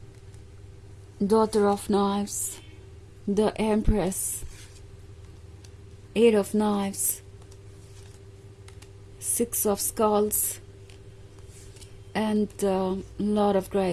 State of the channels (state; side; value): identical; both; correlation 1.00